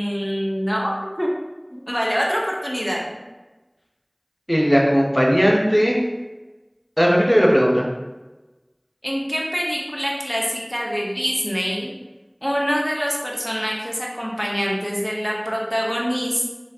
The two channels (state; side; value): identical; both; correlation 1.00